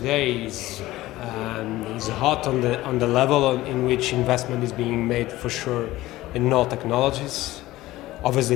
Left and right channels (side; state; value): right; quieter; 16.9 dB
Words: is hot on the level in which investment is being made for sure in all technologies.